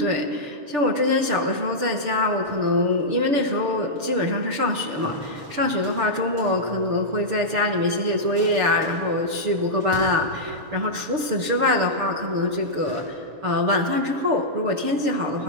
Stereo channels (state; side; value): late; left; 6.8 ms